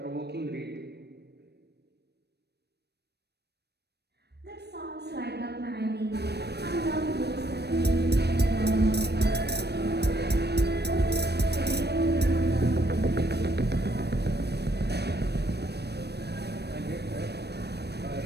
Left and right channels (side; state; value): left; late; 0.48 ms